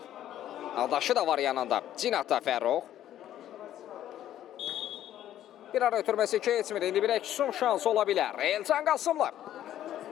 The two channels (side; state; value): right; quieter; 11.9 dB